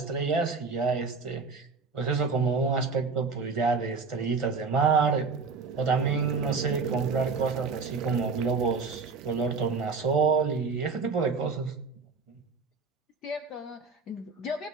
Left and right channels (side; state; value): left; quieter; 4.6 dB